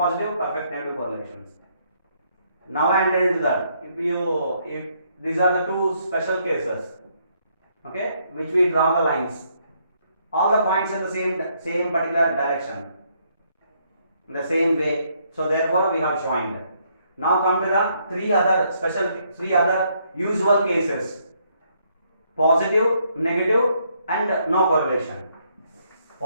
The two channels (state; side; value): inverted; both; correlation -0.71